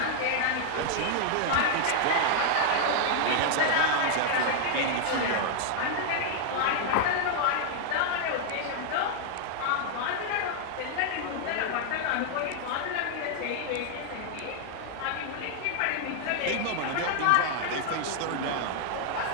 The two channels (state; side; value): different; both; correlation 0.00